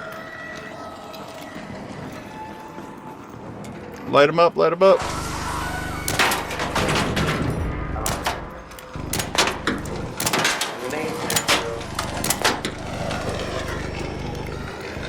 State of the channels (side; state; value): both; identical; correlation 1.00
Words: Light him up, light him up.